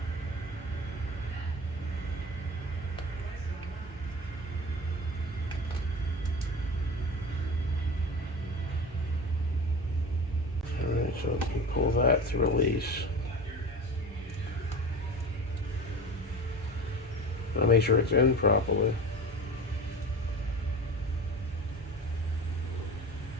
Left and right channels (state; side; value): normal; both; correlation 0.33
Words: alright, so we can pull that to release. I'll make sure it's in properly.